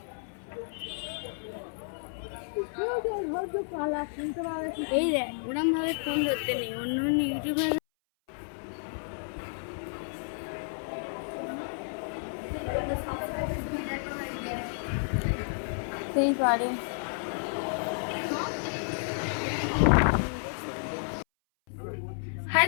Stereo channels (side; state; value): right; silent; 57 dB below the other